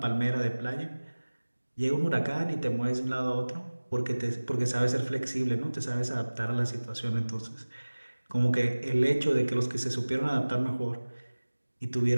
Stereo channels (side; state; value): both; inverted; correlation -1.00